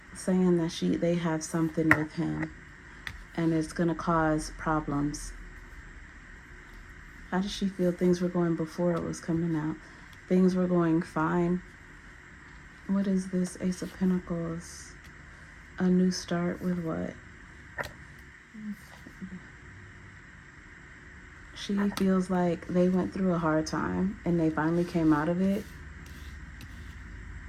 saying that they have something with him and it's gonna cause problems. How does she feel things were going before it was coming out? Things were going fine. What is this? Ace of Pentacles. A new start with what? She feels like they went through a hard time and they finally came out of it.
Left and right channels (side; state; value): both; identical; correlation 1.00